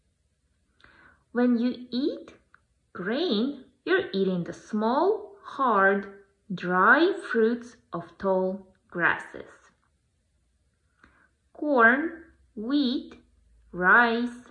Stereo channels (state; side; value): identical; both; correlation 1.00